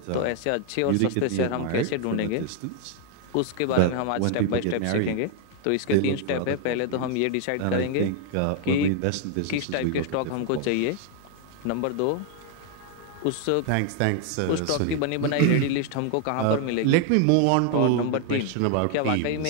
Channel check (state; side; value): different; both; correlation 0.00